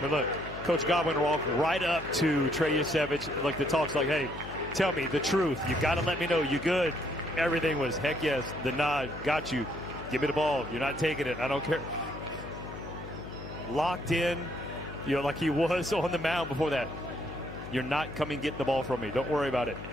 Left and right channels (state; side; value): noise; left; hum, 11 dB below the sound